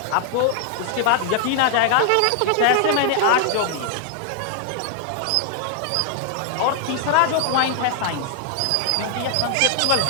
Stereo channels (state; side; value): different; both; correlation 0.00